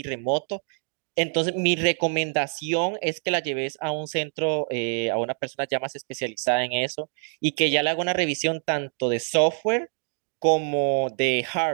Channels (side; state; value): left; silent; 58 dB below the other